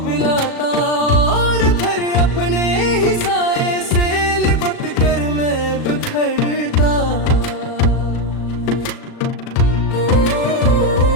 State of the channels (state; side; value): late; right; 37 ms